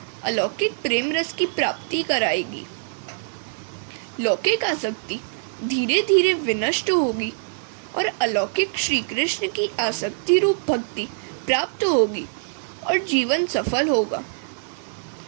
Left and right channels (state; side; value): silent; left; digital silence